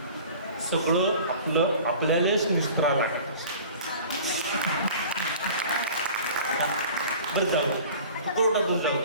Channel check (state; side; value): inverted; both; correlation -0.43